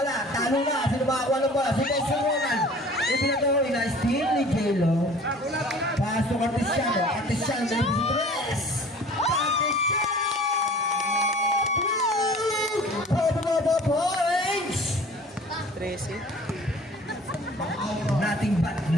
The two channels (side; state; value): both; normal; correlation 0.47